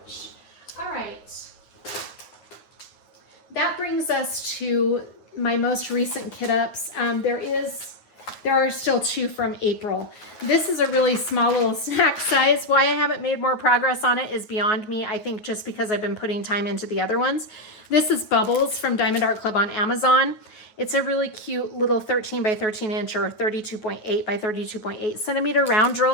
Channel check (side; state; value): right; late; 9.3 ms